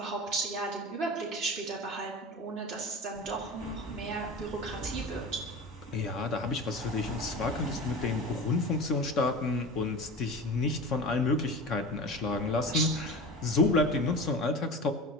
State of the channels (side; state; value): both; normal; correlation 0.32